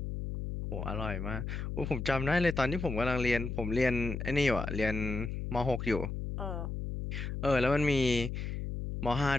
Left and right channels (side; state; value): left; noise; hum, 4 dB below the sound